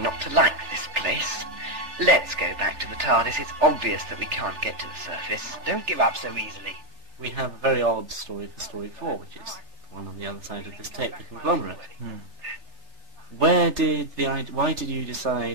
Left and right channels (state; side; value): late; left; 3.4 ms